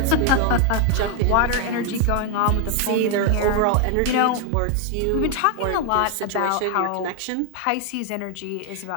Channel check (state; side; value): different; both; correlation 0.00